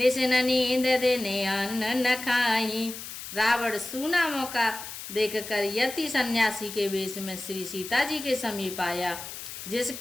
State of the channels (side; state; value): left; noise; hiss, 10 dB below the sound